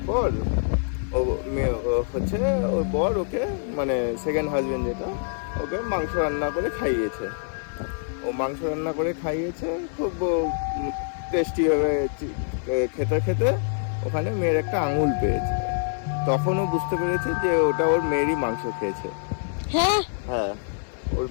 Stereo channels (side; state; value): right; silent; 61 dB below the other